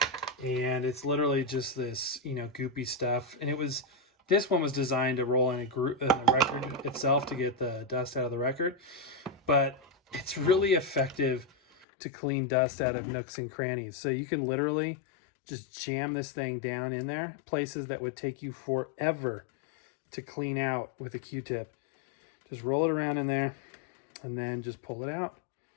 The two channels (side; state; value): right; drops out; at 11.9 s